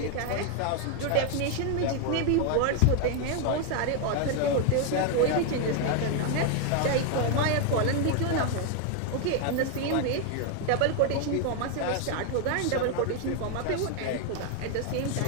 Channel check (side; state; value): both; different; correlation 0.01